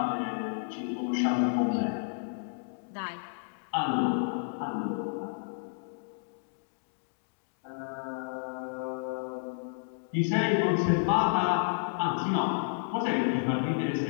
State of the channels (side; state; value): right; silent; digital silence